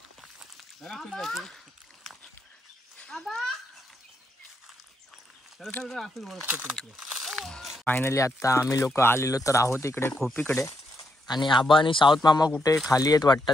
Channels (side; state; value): both; normal; correlation 0.79